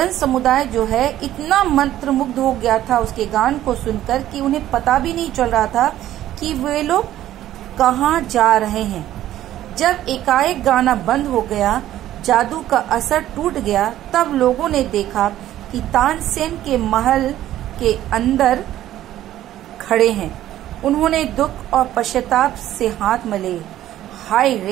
समुदाय जो है इतना मंत्रमुग्ध हो गया था उसके गान को सुनकर कि उन्हें पता भी नहीं चल रहा था कि वे लोग कहाँ जा रहे हैं। जब एकाएक गाना बंद हो गया, जादू का असर टूट गया, तब लोगों ने देखा कि तानसेन के महल के अंदर खड़े हैं। उन्होंने दुख और पश्चाताप से हाथ मले। हाय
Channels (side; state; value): left; quieter; 13.1 dB